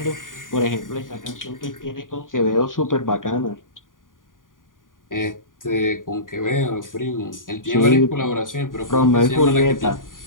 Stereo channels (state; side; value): late; right; 0.89 ms